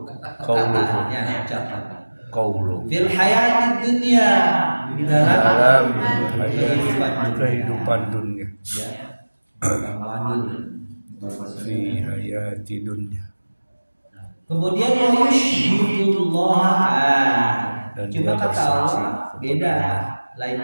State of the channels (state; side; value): inverted; both; correlation -1.00